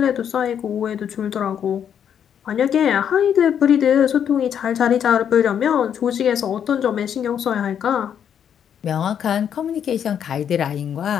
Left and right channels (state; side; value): quieter; right; 8.7 dB